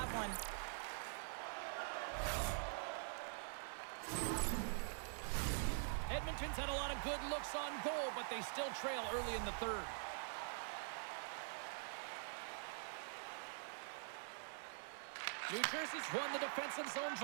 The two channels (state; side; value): silent; left; digital silence